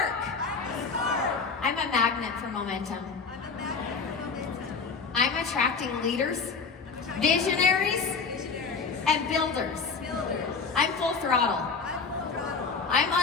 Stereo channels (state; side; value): quieter; right; 5.0 dB